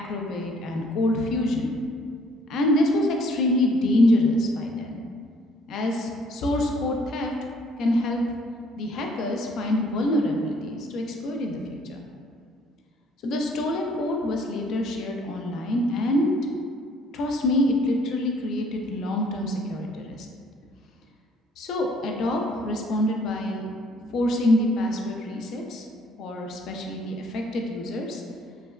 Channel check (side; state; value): both; normal; correlation 0.61